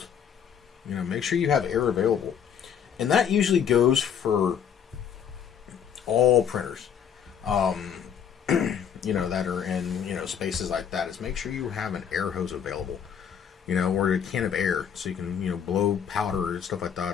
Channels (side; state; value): right; quieter; 8.1 dB